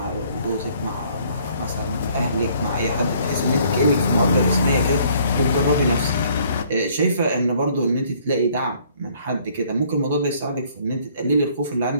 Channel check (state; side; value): inverted; both; correlation -0.61